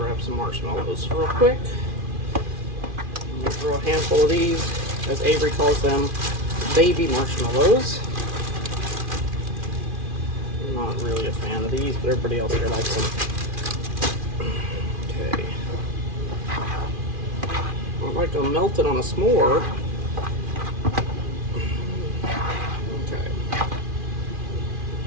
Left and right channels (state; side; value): late; left; 2.4 ms